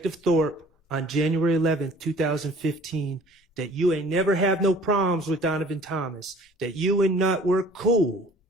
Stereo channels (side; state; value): both; normal; correlation 0.51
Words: Thorpe on January 11th, 2015, that you ain't never have no problems with Donovan Thomas, that you and Nut were cool,